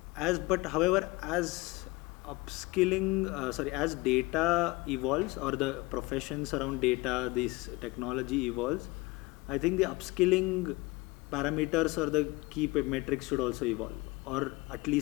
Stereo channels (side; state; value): right; quieter; 23.2 dB